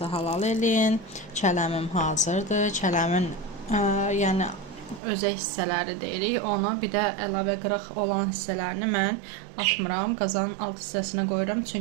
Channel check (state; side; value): drops out; left; at 5.0 s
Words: halal eləyin. Kələmim hazırdır. Kələmin yəni özək hissələri deyirik. Onu bir də əlavə qırıq olan hissələrini mən atmıram. Qazanın alt hissəsinə qoyuram.